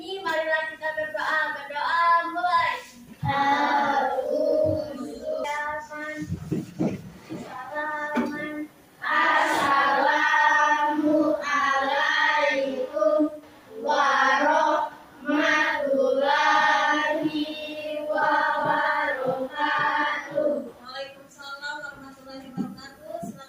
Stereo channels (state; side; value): identical; both; correlation 1.00